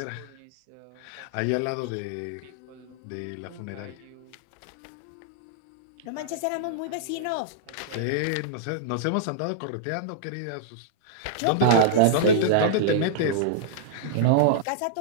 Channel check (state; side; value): different; both; correlation -0.02